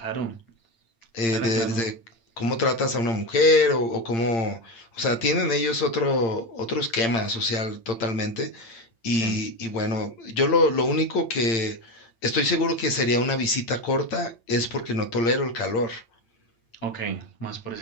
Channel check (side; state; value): right; late; 8.8 ms